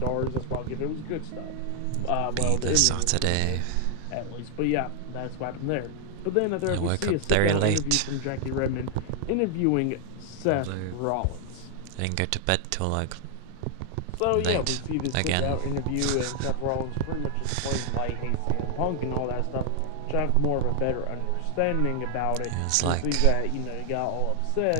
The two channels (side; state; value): both; different; correlation 0.00